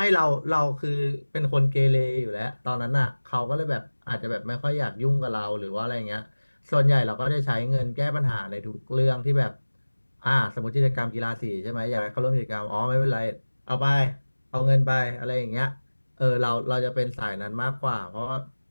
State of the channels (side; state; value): both; inverted; correlation -1.00